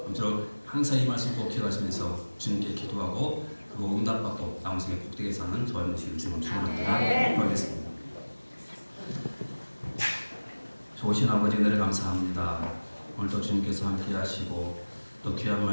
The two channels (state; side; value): inverted; both; correlation -1.00